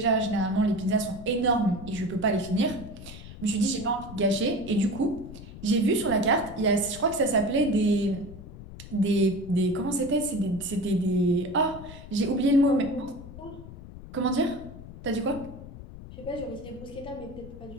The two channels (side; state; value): left; noise; rumble, 14 dB below the sound